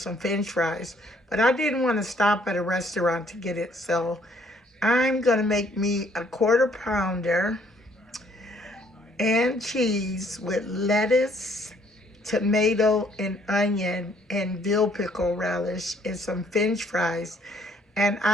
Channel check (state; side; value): normal; both; correlation 0.64